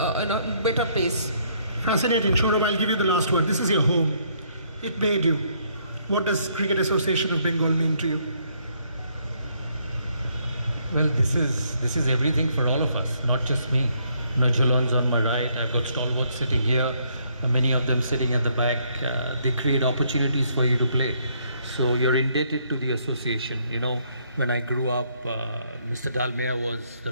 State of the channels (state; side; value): inverted; both; correlation -0.70